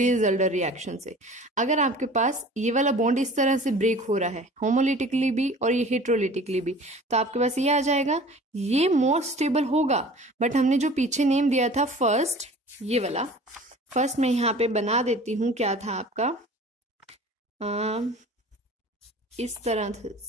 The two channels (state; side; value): normal; both; correlation 0.44